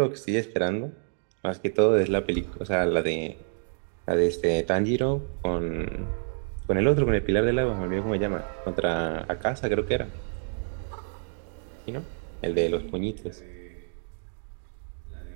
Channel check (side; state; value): left; silent; digital silence